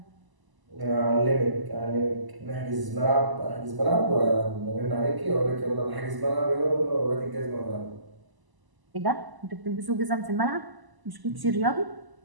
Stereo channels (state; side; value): late; left; 1.0 ms